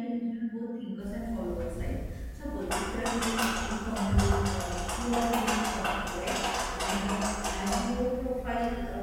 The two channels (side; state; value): both; identical; correlation 1.00